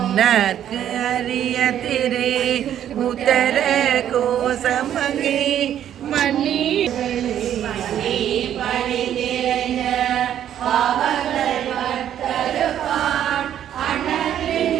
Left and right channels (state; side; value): quieter; left; 10.5 dB